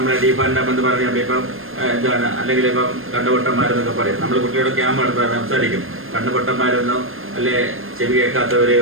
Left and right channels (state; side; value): late; left; 0.60 ms